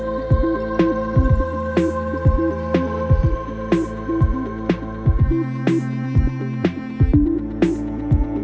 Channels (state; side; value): identical; both; correlation 1.00